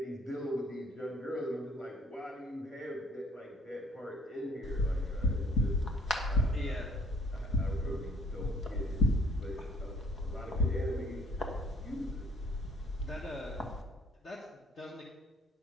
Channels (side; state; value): both; normal; correlation 0.58